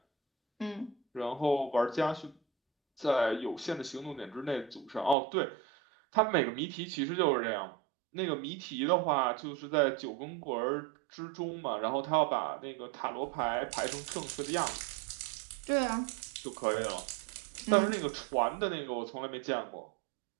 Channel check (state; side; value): drops out; left; at 5.2 s